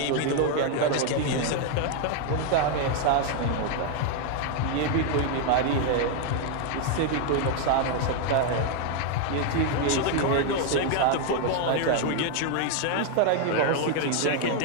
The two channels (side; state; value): both; different; correlation 0.01